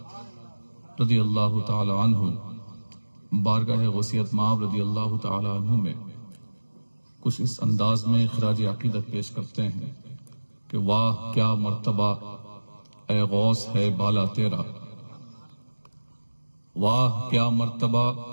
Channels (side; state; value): both; inverted; correlation -1.00